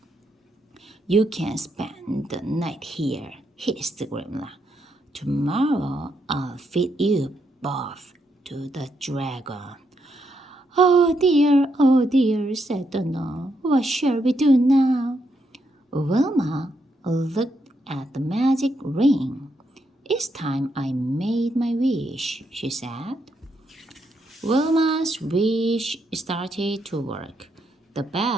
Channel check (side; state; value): both; normal; correlation 0.79